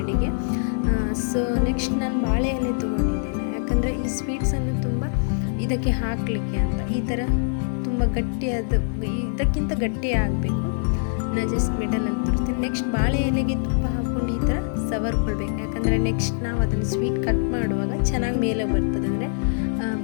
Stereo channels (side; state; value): right; silent; digital silence